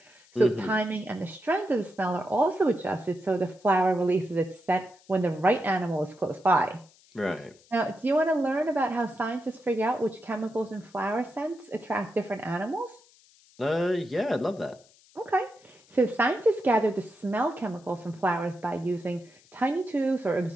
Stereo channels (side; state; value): left; noise; hiss, 28 dB below the sound